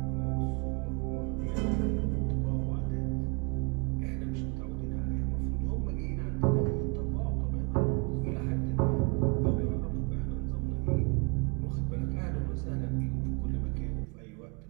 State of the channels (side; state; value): left; quieter; 33.0 dB